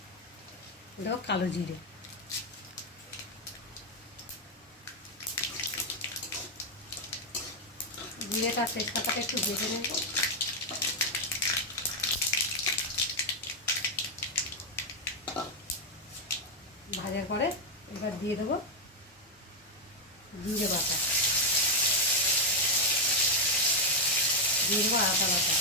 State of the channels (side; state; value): both; normal; correlation 0.01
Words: দেবো কালো জিরে। জিরেটা আর তেজপাতাটা একটু ভেজে নেব। ভাজার পরে এবার দিয়ে দেবো জিরে বাটা, দিয়ে দেবো আদা বাটা,